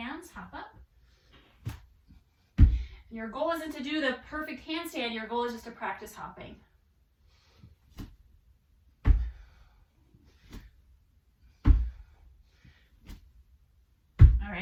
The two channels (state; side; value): identical; both; correlation 1.00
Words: hop up. And your goal isn't to do the perfect handstand. Your goal is just to practice hopping. All